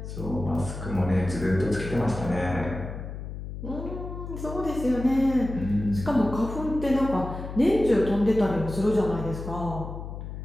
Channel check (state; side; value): noise; left; hum, 8 dB below the sound